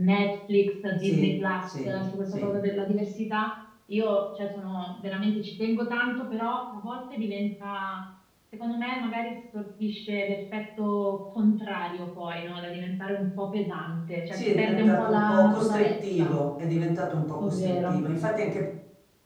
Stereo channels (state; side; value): identical; both; correlation 1.00